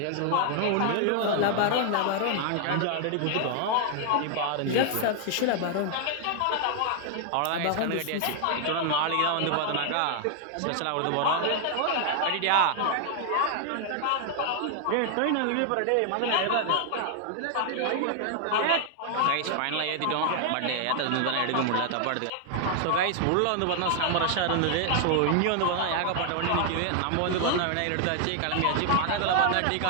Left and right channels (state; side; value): different; both; correlation 0.00